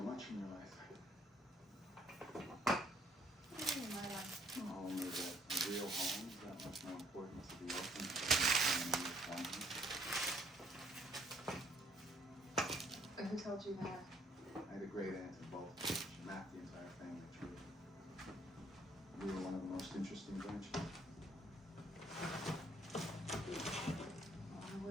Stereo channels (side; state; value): both; normal; correlation 0.65